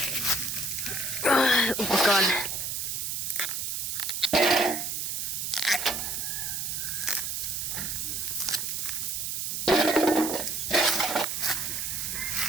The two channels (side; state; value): right; noise; hiss, 2 dB below the sound